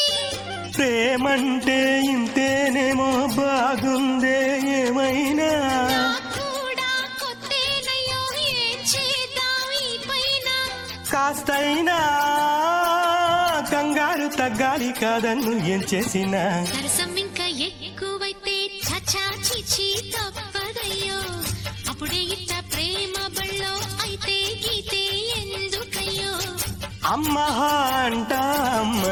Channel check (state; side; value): identical; both; correlation 1.00